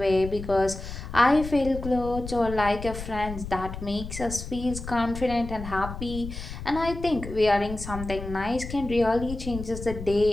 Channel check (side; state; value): left; noise; rumble, 9 dB below the sound